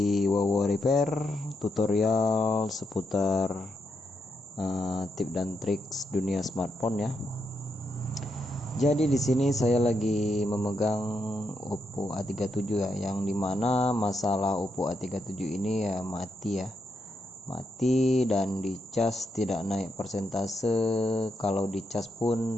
Wawo Repair, tutorial seputar tip dan trik dunia smartphone ya. Jadi di sini saya lagi memegang Oppo A37 ya, yang dimana masalah Oppo A37 ini ya mati dan dicas tidak naik persentase. Kalau dicas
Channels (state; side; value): normal; both; correlation 0.81